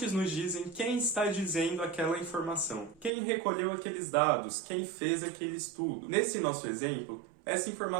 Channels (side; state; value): left; drops out; at 3.1 s